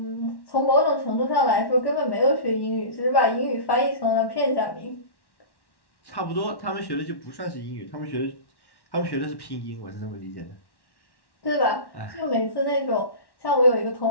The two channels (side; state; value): right; late; 1.1 ms